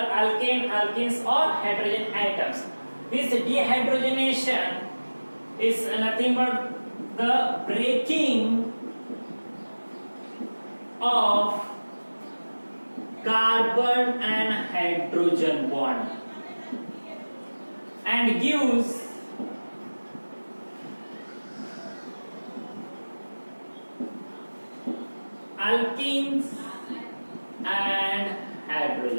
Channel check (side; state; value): both; inverted; correlation -1.00